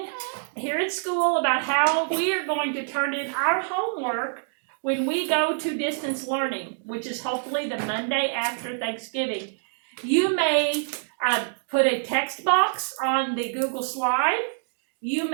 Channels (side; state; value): left; silent; digital silence